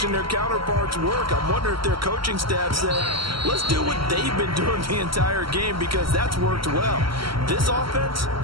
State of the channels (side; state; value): left; late; 0.74 ms